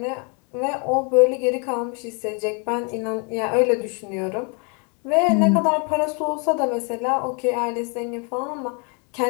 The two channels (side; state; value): right; quieter; 35.3 dB